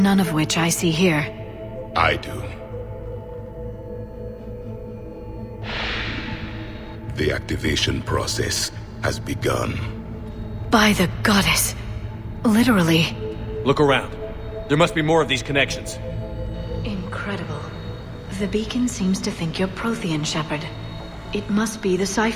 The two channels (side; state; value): both; identical; correlation 1.00